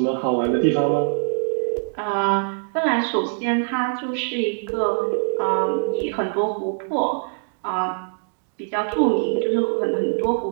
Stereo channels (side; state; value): left; silent; digital silence